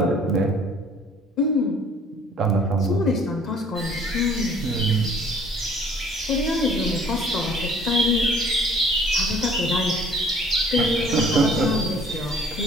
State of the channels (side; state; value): both; normal; correlation 0.54